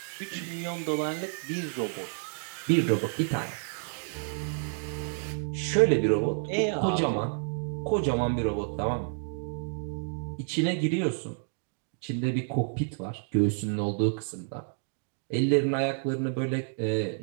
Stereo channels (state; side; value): silent; left; 57 dB below the other